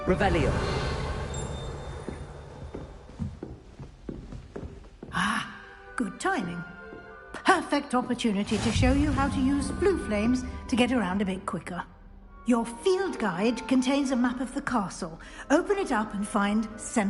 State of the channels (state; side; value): identical; both; correlation 1.00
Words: Revelio. Ah, good timing. Perfect opportunity to show you how to use blue flames to get around a bit quicker. Your field guide contains a map of the castle. Open it up and find